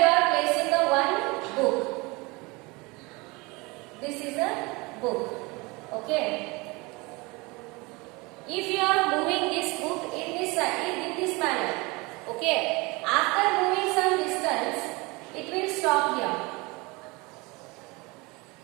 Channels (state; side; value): quieter; left; 25.2 dB